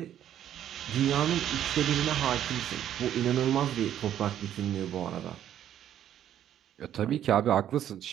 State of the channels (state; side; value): quieter; left; 10.9 dB